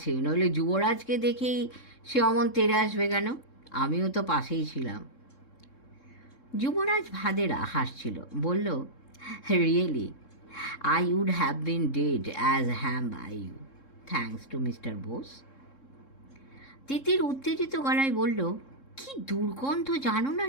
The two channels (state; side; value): late; right; 3.7 ms